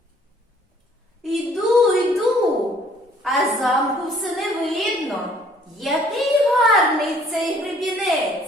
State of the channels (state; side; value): normal; both; correlation 0.59